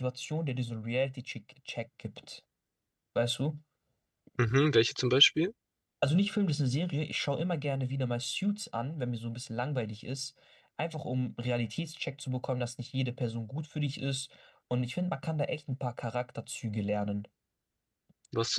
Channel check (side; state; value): both; identical; correlation 1.00